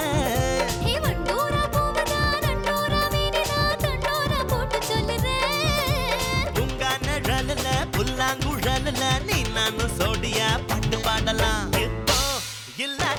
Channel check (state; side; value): identical; both; correlation 1.00